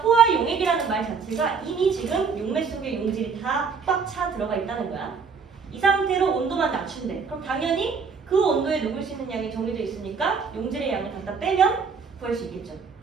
용액이라는 말 자체가 이미 지금 용매 속에 용질이 다 꽉 차 들어가 있다는 거야. 이 상태로 온도만 낮춘대. 그럼 당연히 그 온도에 녹을 수 있는 양이 정해져 있으니까 용질의 양을 갖다 빼면 구할 수 있겠죠.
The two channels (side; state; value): left; quieter; 5.6 dB